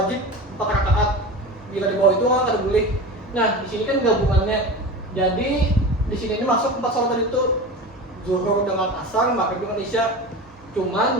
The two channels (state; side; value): normal; both; correlation 0.30